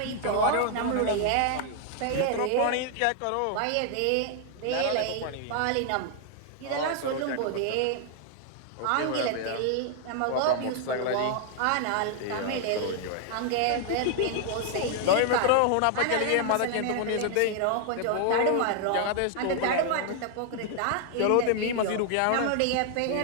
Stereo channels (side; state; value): both; different; correlation 0.00